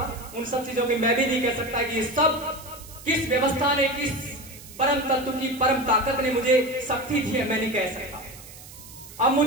उन सब चीजों की। मैं भी नहीं कह सकता कि ये सब किस व्यवस्था ने, किस परम तत्व की परम ताकत ने मुझे शक्ति दी है, मैं नहीं कह सकता। अब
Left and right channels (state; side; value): noise; right; hiss, 17 dB below the sound